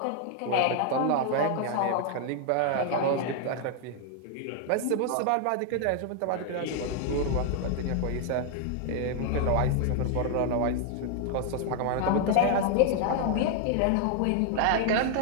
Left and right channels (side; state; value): both; different; correlation 0.00